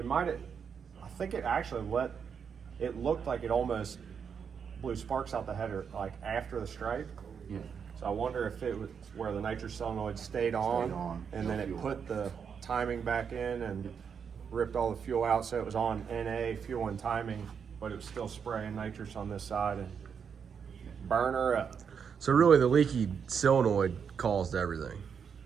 I think it actually it looked like it almost blew sparks out the header, like after the stripe. Yeah. So I wonder if it was where the nitrous solenoid stayed on, and then it put the timing back in and ripped all the fuel out, so it was on NA, fuel and timing, but it was still spraying nitrous on this side and burn her up. So really, the leaky solenoid caused everything.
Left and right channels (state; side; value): quieter; left; 6.8 dB